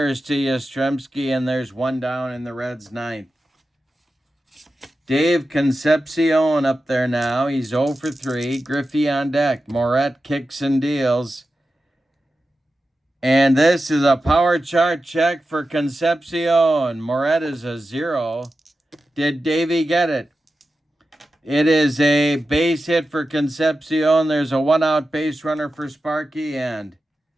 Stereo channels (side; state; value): both; normal; correlation 0.92